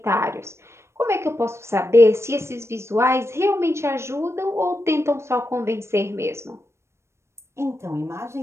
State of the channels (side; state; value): left; late; 0.13 ms